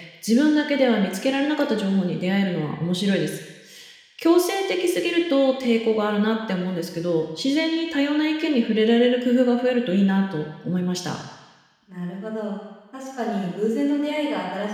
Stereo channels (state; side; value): identical; both; correlation 1.00